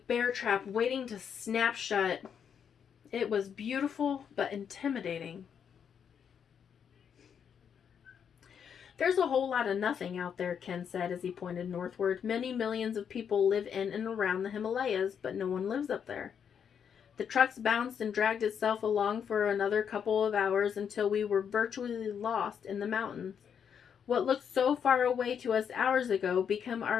trap waiting to snap shut. It was beautiful but intimidating. There's a whole lot of nothing out there, Ken said as he pointed northward. Many millions of people live in and around the Himalayas, but no one lives up there. The trucks bounced and dragged itself along for another couple of hours until we were virtually lost in the mountains. What looked so far away to us hours ago became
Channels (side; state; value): right; quieter; 7.7 dB